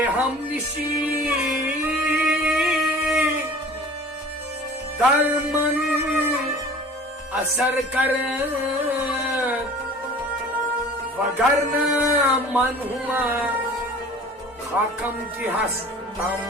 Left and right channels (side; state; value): both; normal; correlation 0.44